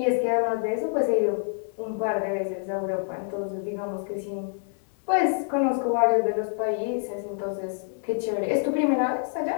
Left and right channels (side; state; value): right; silent; 60 dB below the other